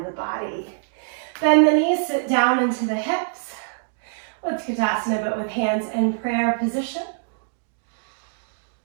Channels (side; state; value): left; silent; digital silence